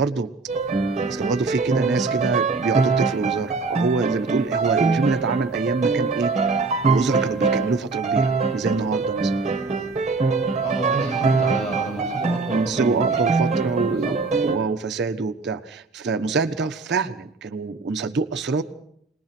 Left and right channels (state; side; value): quieter; left; 3.9 dB